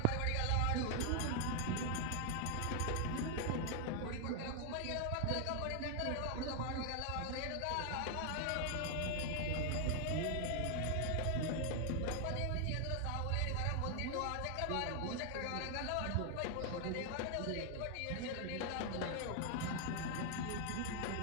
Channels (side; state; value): both; different; correlation 0.00